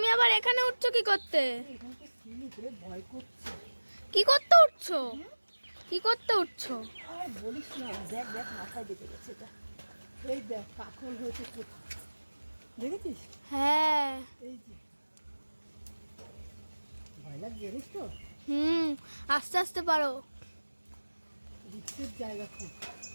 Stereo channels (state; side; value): inverted; both; correlation -1.00